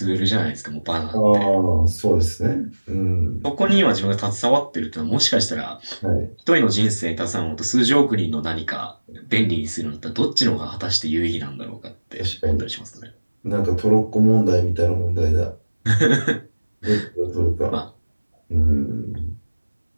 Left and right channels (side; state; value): both; inverted; correlation -1.00